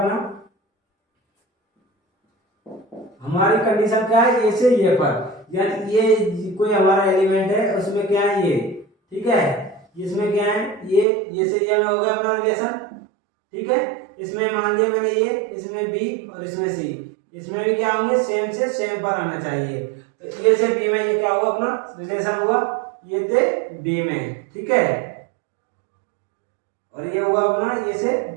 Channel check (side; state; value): left; drops out; at 11.1 s